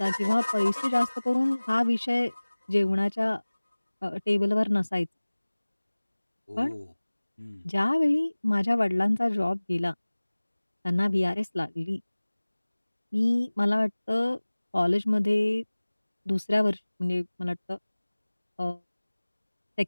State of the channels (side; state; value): both; inverted; correlation -1.00